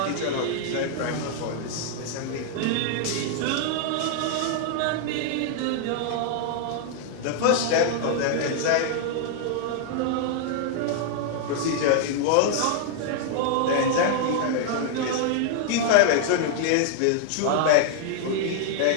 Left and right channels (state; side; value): different; both; correlation -0.01